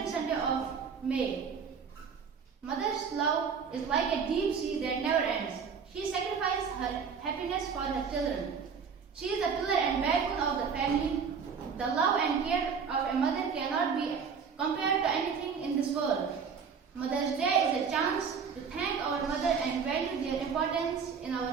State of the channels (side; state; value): left; quieter; 6.2 dB